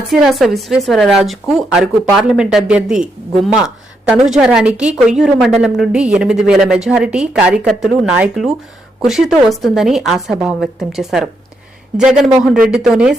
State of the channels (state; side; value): normal; both; correlation 0.79